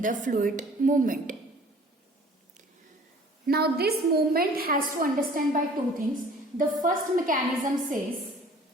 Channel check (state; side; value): normal; both; correlation 0.50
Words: the fluid movement. Now this movement has to understand by 2 things. The first mechanism is